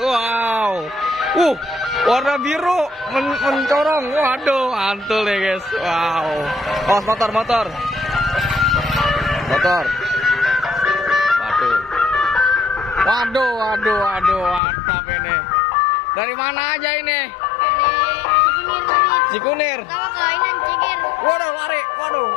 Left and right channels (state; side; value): drops out; right; at 14.6 s